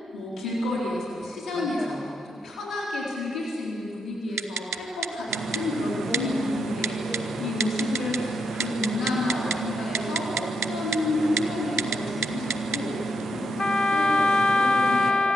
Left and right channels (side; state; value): both; normal; correlation 0.80